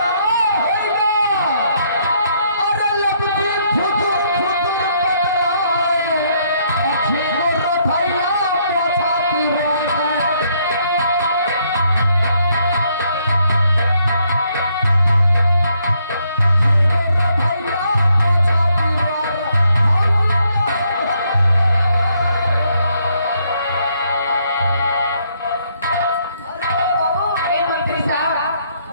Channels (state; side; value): inverted; both; correlation -0.71